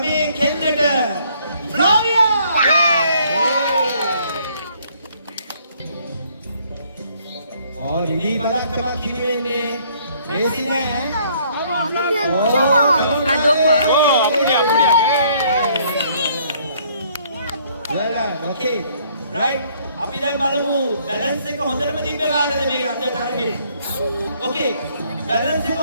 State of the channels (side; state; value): both; inverted; correlation -0.64